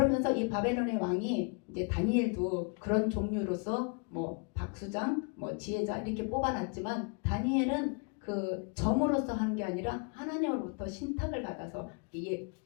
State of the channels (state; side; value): quieter; right; 34.9 dB